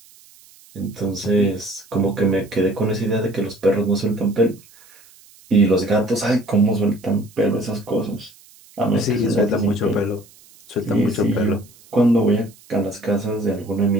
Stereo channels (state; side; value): noise; right; hiss, 26 dB below the sound